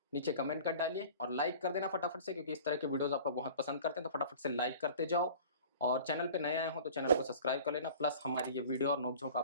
नीचे कमेंट कर डालिए, और लाइक कर देना फटाफट से, क्योंकि इस तरह के वीडियोस आप लोग बहुत पसंद करते हैं, तो फटाफट से लाइक करते जाओ। और चैनल पे नए आए हो तो चैनल को सब्सक्राइब कर लेना। प्लस हमारी ये वीडियो और नोकझोंक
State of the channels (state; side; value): inverted; both; correlation -0.43